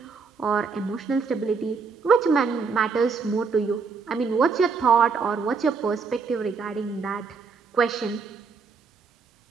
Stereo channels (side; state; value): left; quieter; 5.1 dB